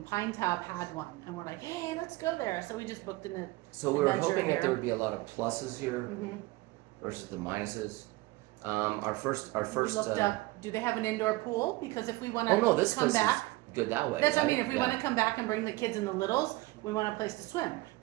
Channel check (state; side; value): quieter; left; 20.8 dB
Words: Pinetop had one, and we're like, hey, let's go there. So we just booked in the. So we were adventure hoping that here. there would be a lot of pluses here Mhm. versus the minuses. Our first. We looked up. Do they have an indoor pool? Because if we want to Oh no, this come place back, is good that way. that's what I right? mean. If we Yeah. want to come back and bring the kids and the littles, we want a place to swim.